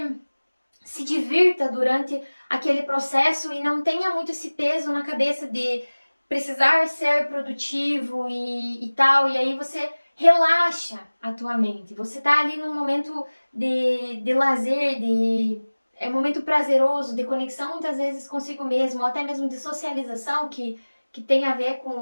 se divirta durante aquele processo e não tenha muito esse peso na cabeça de precisar ser produtivo e tal, e aí você relaxa a tua mente. Você tá ali num momento de lazer, é um momento prazeroso, de conexão muitas vezes consigo mesmo, ou até mesmo de socialização, que tem a ver com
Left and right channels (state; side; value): inverted; both; correlation -1.00